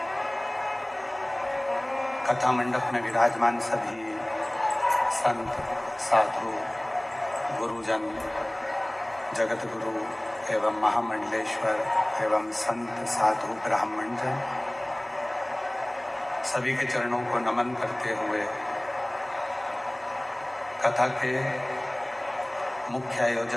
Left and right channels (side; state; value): right; noise; hum, 30 dB below the sound